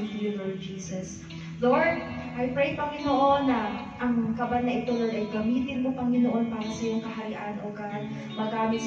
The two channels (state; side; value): identical; both; correlation 1.00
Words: to you, Lord Jesus. Lord, I pray, Panginoon, na ang kaban na ito, Lord, ay gamitin mo, Panginoon, para sa iyong kaharian, O God. Magamit